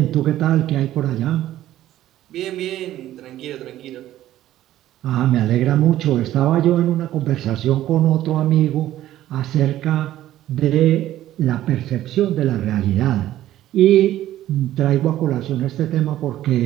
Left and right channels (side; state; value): left; quieter; 13.5 dB